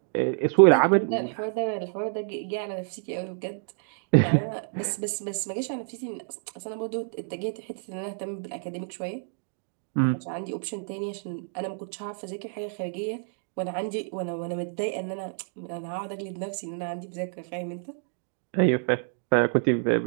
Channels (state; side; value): silent; left; digital silence